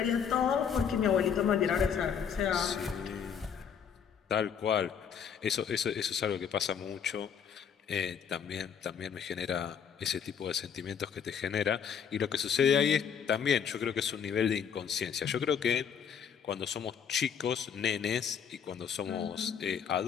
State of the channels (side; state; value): right; quieter; 7.5 dB